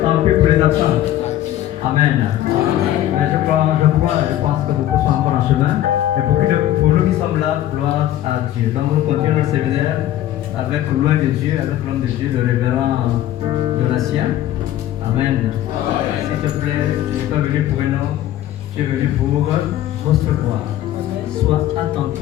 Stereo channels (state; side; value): quieter; right; 12.9 dB